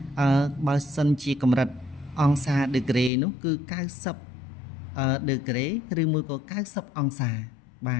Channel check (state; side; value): drops out; right; at 3.1 s